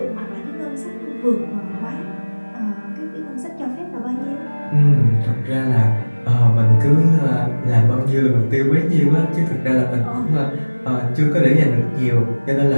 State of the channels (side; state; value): both; inverted; correlation -1.00